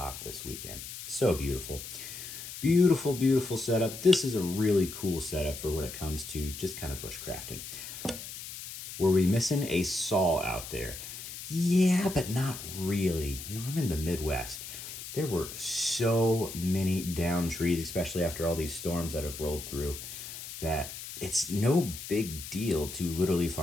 this weekend. So beautiful. Beautiful, beautiful setup. This is a really cool setup for when it comes to just kind of bushcrafting. Were we missing a saw out there? Yeah, but not really. You know, I'm in the Midwest. There were so many downed trees, especially after all these storms that have rolled through, that it's no big deal to literally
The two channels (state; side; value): noise; left; hiss, 10 dB below the sound